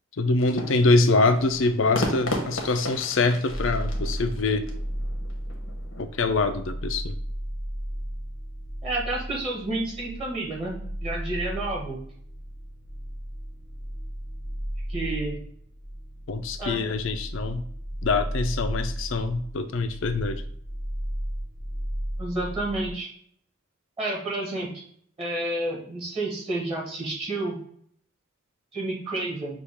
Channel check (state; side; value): normal; both; correlation 0.42